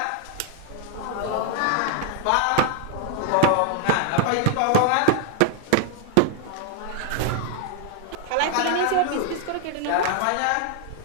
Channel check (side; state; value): both; different; correlation 0.00